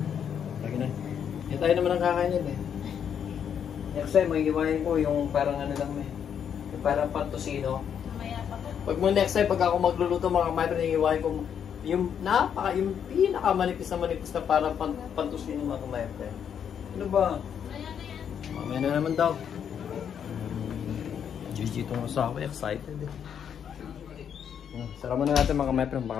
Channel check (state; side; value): quieter; right; 8.2 dB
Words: Lagi na. Hindi tayo naman ang kakain yun, eh. Next time, may iwain ko yung parang ano lang, eh. Yung parang pantusino. Mamaya pa ko. Pag mo next time, pag ako magluluto mga kamay, iwain ko yung pinakamanipis na parang pantusino mga kamay. Ano ba? Mamaya na naman daw. GG itong asawa, excited eh. Sara muna natin mga kamay friend,